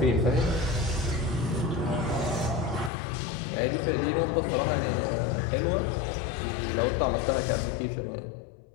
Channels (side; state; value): right; drops out; at 2.9 s